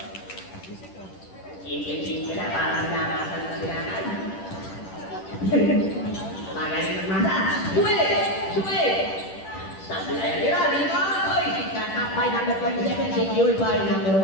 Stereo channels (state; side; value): late; right; 10 ms